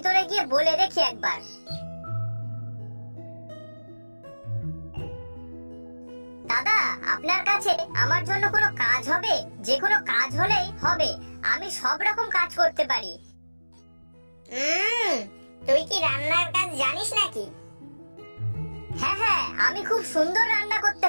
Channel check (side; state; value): both; inverted; correlation -1.00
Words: গিয়ে বলে দেখি একবার। দাদা, আপনার কাছে আমার জন্য কোনো কাজ হবে? যে কোনো কাজ হলেই হবে, আমি সব রকম কাজ করতে পারি। তুই কি রান্নার কাজ জানিস নাকি? হ্যাঁ হ্যাঁ, আমি খুব সুন্দর রান্না করতে